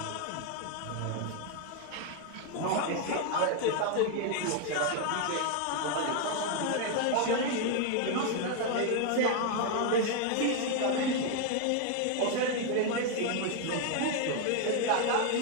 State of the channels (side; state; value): both; different; correlation 0.01